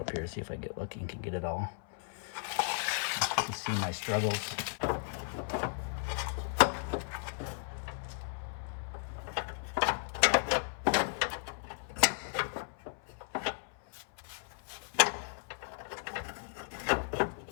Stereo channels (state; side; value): silent; right; 54 dB below the other